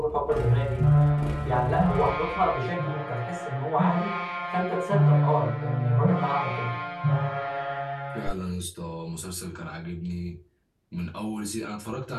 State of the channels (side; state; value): both; identical; correlation 1.00